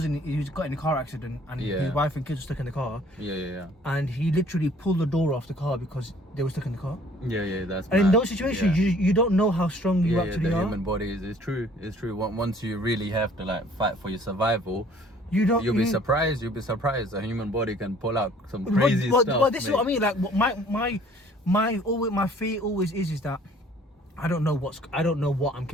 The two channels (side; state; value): both; normal; correlation 0.55